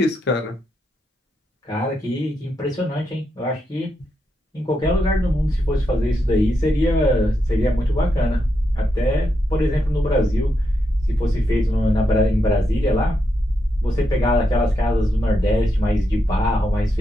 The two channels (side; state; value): both; normal; correlation 0.83